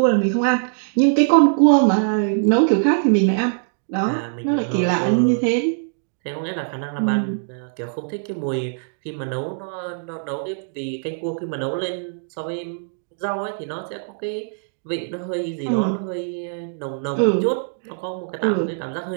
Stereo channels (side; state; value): left; silent; digital silence